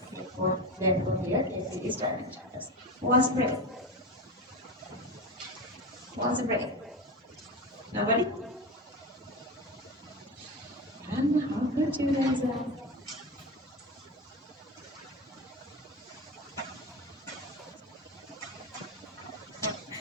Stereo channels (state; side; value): normal; both; correlation 0.23